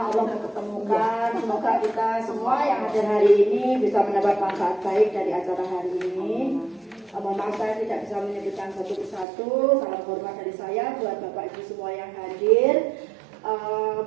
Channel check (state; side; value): drops out; left; at 9.2 s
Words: Allah mempertemukan. Semoga kita semua yang hadir hari ini bisa mendapat manfaat baik dari acara hari ini. Mohon maaf saya tidak bisa menyebutkan satu persatu. Salam hormat dari saya buat Bapak Ibu semua yang hadir.